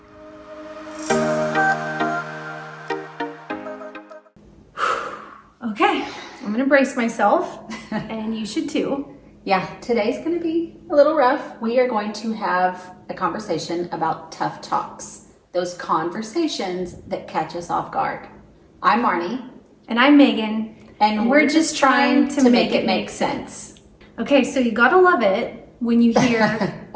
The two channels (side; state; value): both; identical; correlation 1.00